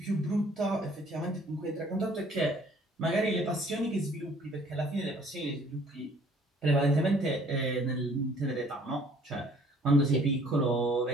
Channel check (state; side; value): normal; both; correlation 0.57